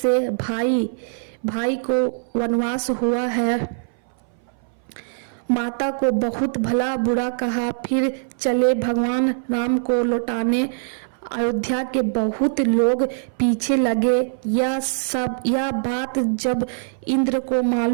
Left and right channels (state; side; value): silent; left; 60 dB below the other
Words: भाई को वनवास हुआ है। माता को बहुत भला बुरा कहा, फिर चले भगवान राम को लौटाने। अयोध्या के बहुत लोग पीछे लगे। यह बात जब इंद्र को